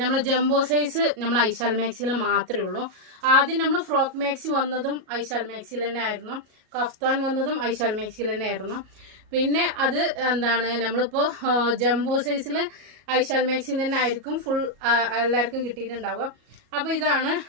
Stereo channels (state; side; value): late; left; 37 ms